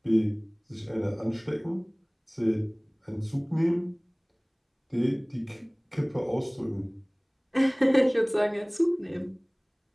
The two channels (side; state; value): both; identical; correlation 1.00